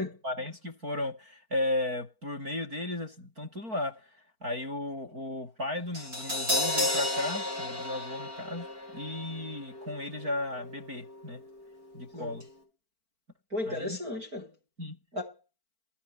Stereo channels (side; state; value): left; late; 4.5 ms